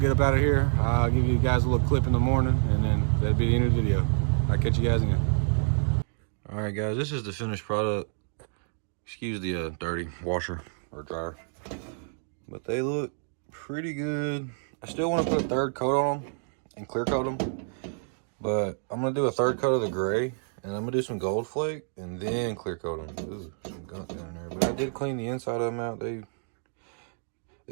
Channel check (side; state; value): left; silent; digital silence